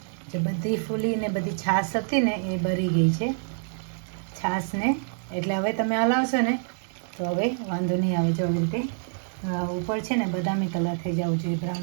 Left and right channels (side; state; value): left; silent; digital silence